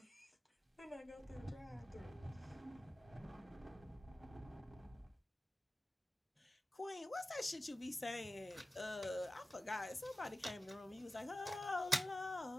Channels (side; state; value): both; normal; correlation 0.95